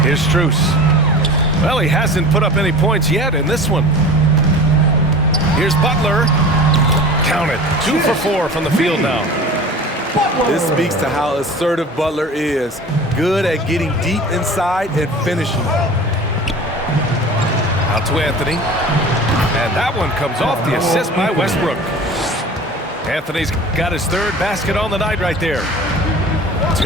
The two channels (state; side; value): normal; both; correlation 0.38